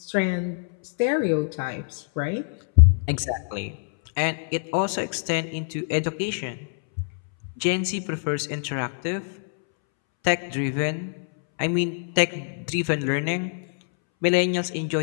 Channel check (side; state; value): right; silent; 62 dB below the other